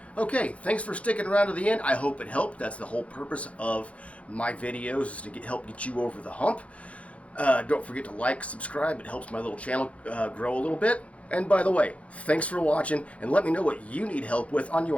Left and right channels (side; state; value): right; late; 0.064 ms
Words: Okay, thanks for sticking around to the end. I hope it helped. That's the whole purpose of my videos, is to help get you over the hump. Don't forget to like, subscribe. It helps my little channel grow a little bit. And by the way, thanks for watching, and let me know what you need help with on